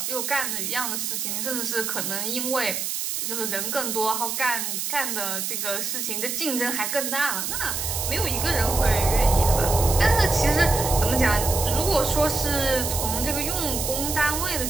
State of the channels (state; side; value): noise; right; hiss, 2 dB below the sound